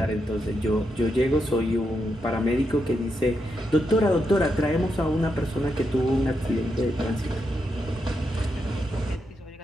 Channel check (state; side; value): normal; both; correlation 0.83